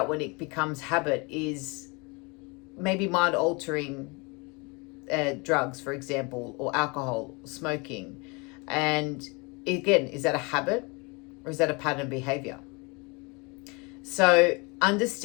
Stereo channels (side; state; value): right; quieter; 28.9 dB